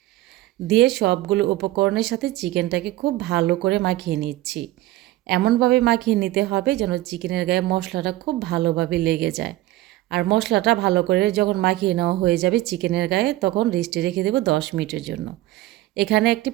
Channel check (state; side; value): quieter; left; 16.6 dB